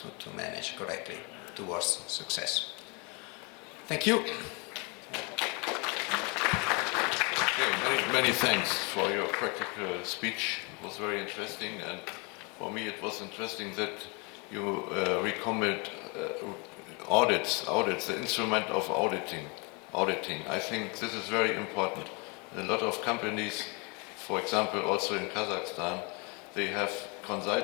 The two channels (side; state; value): right; quieter; 31.3 dB